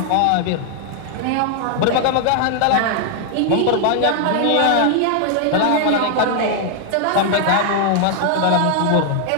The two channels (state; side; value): different; both; correlation 0.00